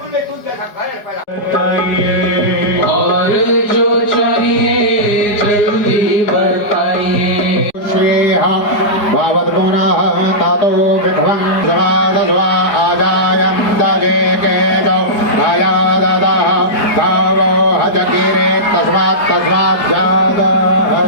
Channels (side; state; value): right; late; 5.1 ms